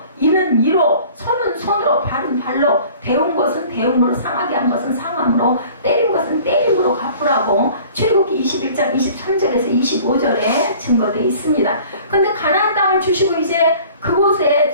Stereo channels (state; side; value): inverted; both; correlation -0.48